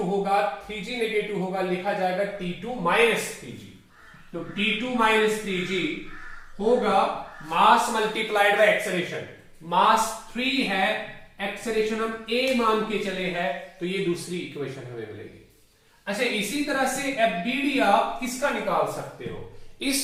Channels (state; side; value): identical; both; correlation 1.00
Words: होगा, 3G नेगेटिव होगा, लिखा जाएगा T2 माइनस 3G। तो T2 माइनस 3G होगा मास मल्टीप्लाइड बाय एक्सेलरेशन। मास 3 है, एक्सेलरेशन हम A मान के चले हैं, तो ये दूसरी इक्वेशन हमें मिलेगी। अच्छा, इसी तरह से FBD आप किसका निकाल सकते हो?